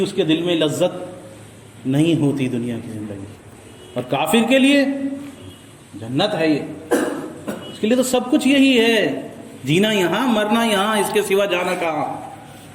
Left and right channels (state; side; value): identical; both; correlation 1.00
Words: اس کے دل میں، لذت نہیں ہوتی دنیا کی زندگی۔ اور کافر کے لیے جنت ہے یہ، اس کے لیے تو سب کچھ یہی ہے، جینا یہاں مرنا یہاں، اس کے سوا جانا کہاں۔